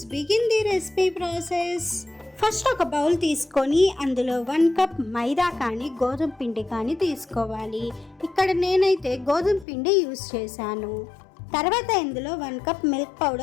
begin the recipe process. First ఒక బౌల్ తీసుకొని అందులో 1 కప్ మైదా కానీ గోధుమ పిండి కానీ తీసుకోవాలి. ఇక్కడ నేనైతే గోధుమ పిండి యూస్ చేశాను. తర్వాత ఇందులో 1 కప్ మిల్క్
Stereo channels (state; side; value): drops out; right; at 9.7 s